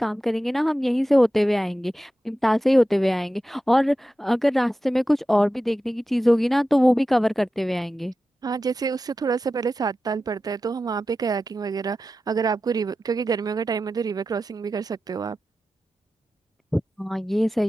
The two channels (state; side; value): normal; both; correlation 0.93